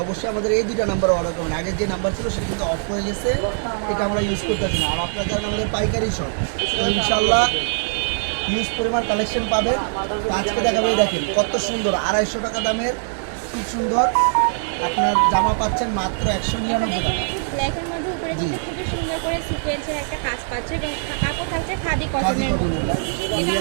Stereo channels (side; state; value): left; silent; digital silence